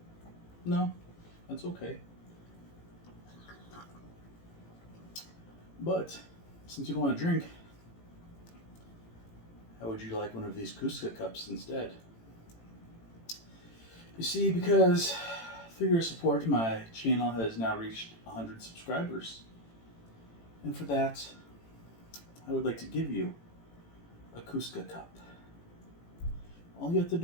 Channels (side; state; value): right; late; 18 ms